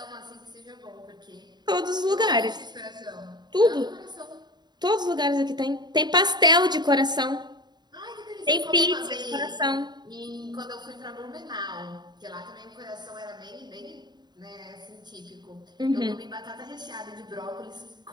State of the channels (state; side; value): late; left; 0.21 ms